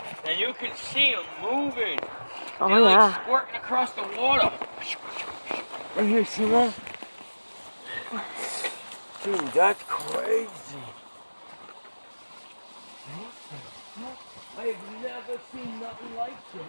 And you can see them moving. Oh, They're yeah. like squirting across the water. Right here, see that? Dude, that's crazy. I have never seen nothing like this.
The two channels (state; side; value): inverted; both; correlation -1.00